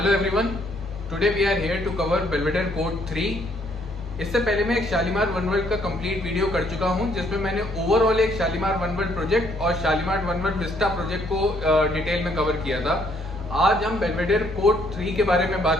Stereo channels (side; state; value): both; normal; correlation 0.68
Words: everyone, today we are here to cover Belvedere court 3। इससे पहले मैं एक शालीमार वन वर्ल्ड का कंप्लीट वीडियो कर चुका हूं, जिसमें मैंने ओवरऑल एक शालीमार वन वर्ल्ड प्रोजेक्ट और Shalimar one world Vista project को डिटेल में कवर किया था। आज हम बेल्वेडेयर कोर्ट 3 के बारे में